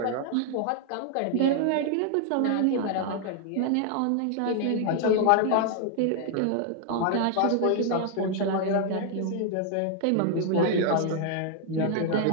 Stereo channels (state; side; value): different; both; correlation 0.00